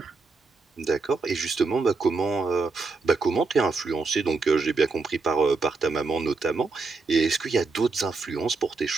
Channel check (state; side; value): quieter; left; 4.1 dB